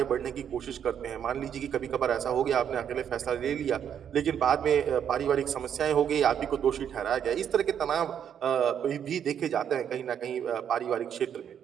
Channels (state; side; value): quieter; left; 8.7 dB